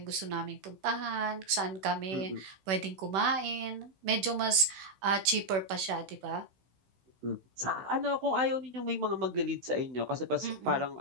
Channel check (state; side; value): late; left; 16 ms